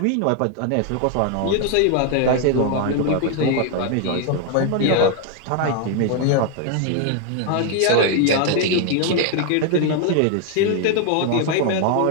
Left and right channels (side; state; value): both; different; correlation 0.00